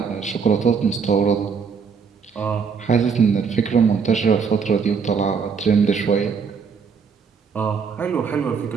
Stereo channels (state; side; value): quieter; left; 5.9 dB